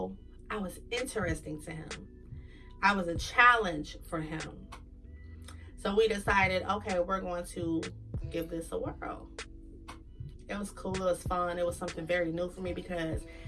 I was interesting to him. I was a challenge for him. So we decided, okay, we're going to give this a whirl. It was cool. It was fun. It was something very new for me because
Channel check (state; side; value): identical; both; correlation 1.00